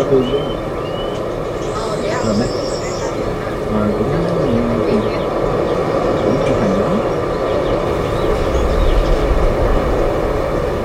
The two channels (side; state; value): both; identical; correlation 1.00